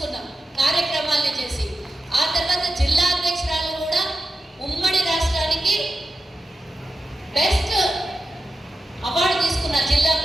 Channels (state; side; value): normal; both; correlation 0.90